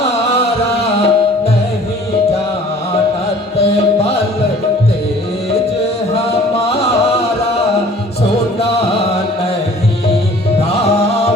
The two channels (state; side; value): normal; both; correlation 0.51